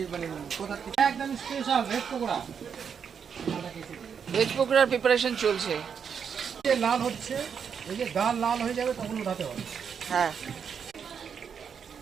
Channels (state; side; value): quieter; left; 7.0 dB